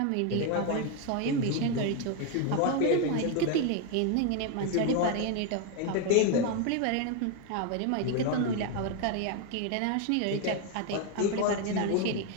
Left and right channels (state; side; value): different; both; correlation 0.01